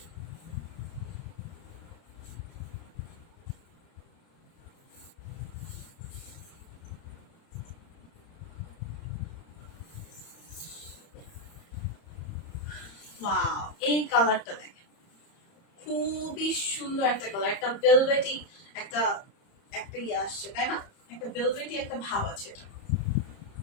ওয়াও, এই কালারটা দেখেন, খুবই সুন্দর একটা কালার, একটা ভেলভেটি একটা একটা ইয়ে আসছে তাই না? একটা ভেলভেটি একটা ভাব আছে এটা।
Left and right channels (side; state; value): right; late; 30 ms